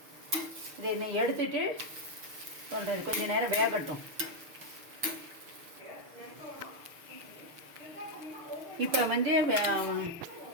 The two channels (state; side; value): late; left; 6.5 ms